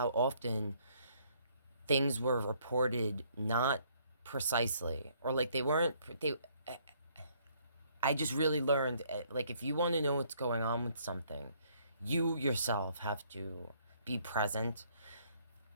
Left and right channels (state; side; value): inverted; both; correlation -0.65